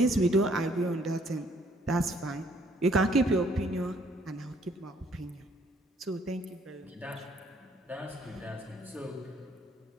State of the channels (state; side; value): normal; both; correlation 0.64